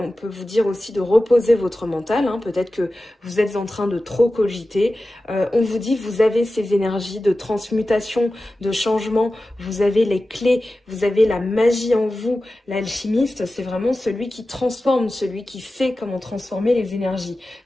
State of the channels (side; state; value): both; normal; correlation 0.94